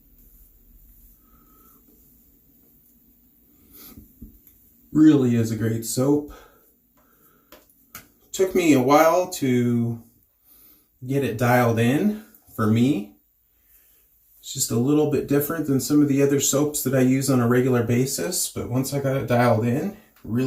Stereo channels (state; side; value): identical; both; correlation 1.00